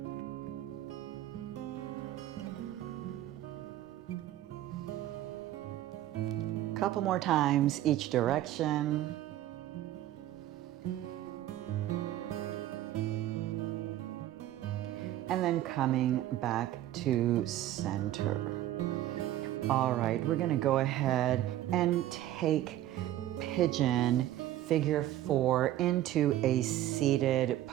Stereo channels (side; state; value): left; quieter; 13.5 dB